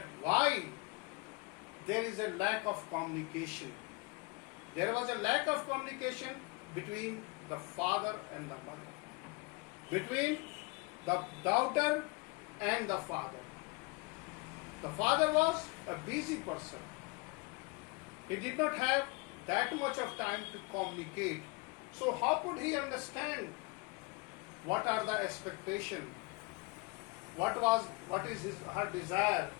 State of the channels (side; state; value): right; quieter; 27.7 dB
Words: why there is a lack of communication. There was a lack of communication between the father and the mother, between the daughter and the father. The father was a busy person. He did not have that much of time to communicate. So how could he understand what are the expectations, what is her desire,